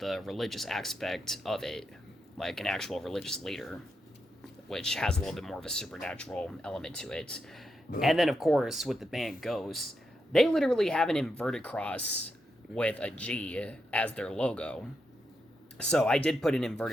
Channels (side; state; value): both; normal; correlation 0.84